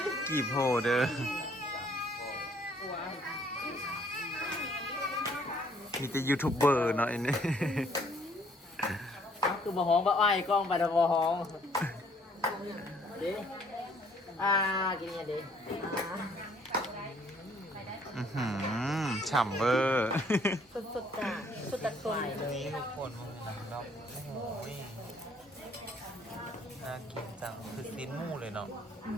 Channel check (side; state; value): both; normal; correlation 0.62